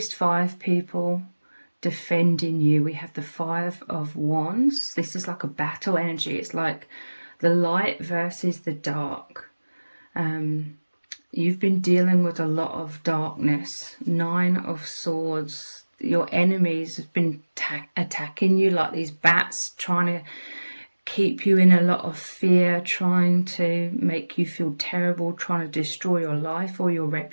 5 people defending you. We have the 5 of Wands. This is like a battle energy. It's like the light versus the dark. You've been dealing with a lot of darkness. 9 of Swords. Your enemies have been attacking you like these bats, trying to keep you in a lot of fear, trying to make you feel terrible, trying to destroy your life or your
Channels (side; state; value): both; inverted; correlation -1.00